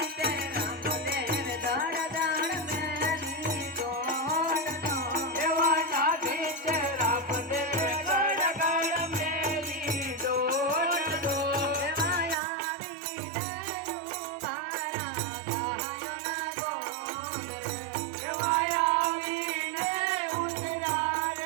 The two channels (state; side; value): drops out; left; at 12.4 s